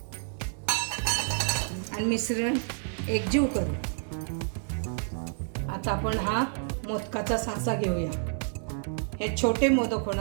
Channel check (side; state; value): left; silent; 57 dB below the other